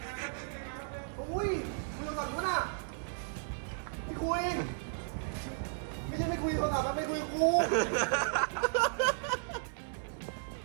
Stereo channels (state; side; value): silent; left; digital silence